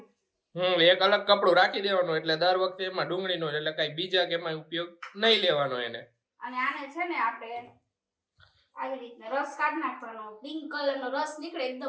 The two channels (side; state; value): both; identical; correlation 1.00